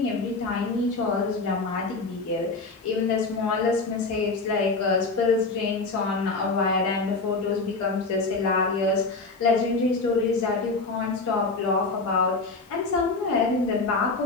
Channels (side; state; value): right; quieter; 3.7 dB